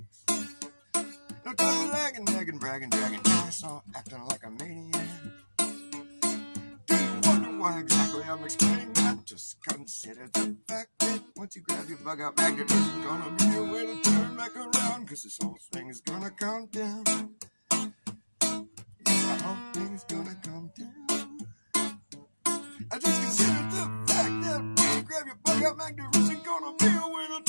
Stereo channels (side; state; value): both; inverted; correlation -1.00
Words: No time for lagging, nagging, bragging, dragging ass, or acting like a maniac. Do you wonder why exactly I'm explaining that? Just consider the fact that once you grab your bug out bag, there isn't gonna be a way to turn back around, cause this whole thing is gonna come down. The whole thing is gonna come down. I just consider the fact that when you grab your bug out bag, there isn't gonna be a way to